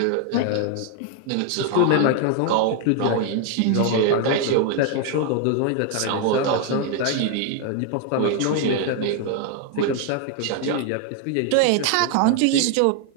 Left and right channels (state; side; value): different; both; correlation 0.00